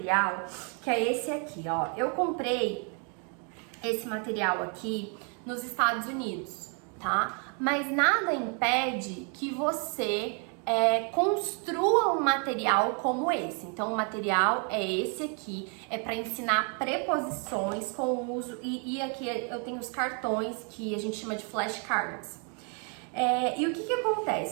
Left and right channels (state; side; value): quieter; left; 39.0 dB